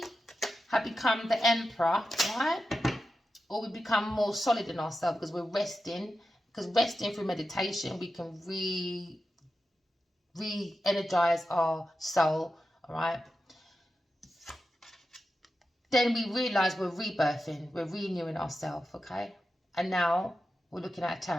have become the Emperor, all right, or we become more solid in ourselves because we're resting, because resting through meditation, we can re-energize our soul. All right. Then we realize we're rebirthing, we're renewing ourselves, okay? And now we're looking at a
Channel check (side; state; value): both; normal; correlation 0.91